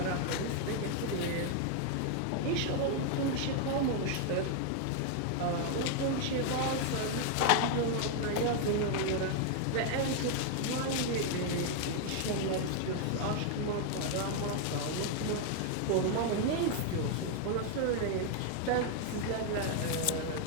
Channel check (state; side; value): different; both; correlation 0.00